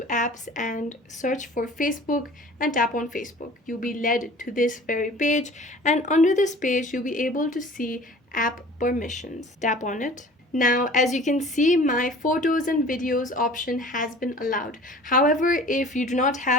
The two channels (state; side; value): normal; both; correlation 0.45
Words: apps and search for Facebook and tap on Facebook. You'll be led to this very page, and under this page you'll be able to see app permissions. Tap on it. Now, as you can see, my photos and videos option has been allowed. However, if you do not